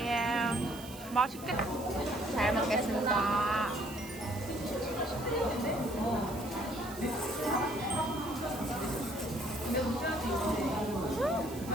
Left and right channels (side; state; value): right; noise; hiss, 16 dB below the sound